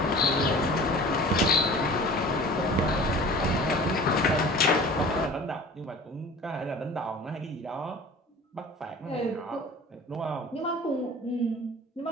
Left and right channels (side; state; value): both; normal; correlation 0.42